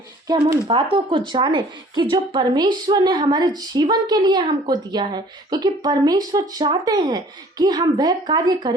कि हम उन बातों को जानें कि जो परमेश्वर ने हमारे जीवन के लिए हमको दिया है। क्योंकि परमेश्वर चाहते हैं कि हम वह कार्य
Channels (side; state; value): both; normal; correlation 0.53